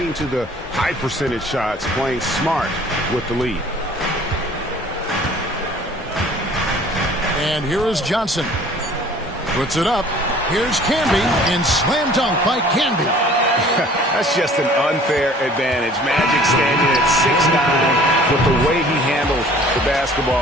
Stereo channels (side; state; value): both; normal; correlation 0.51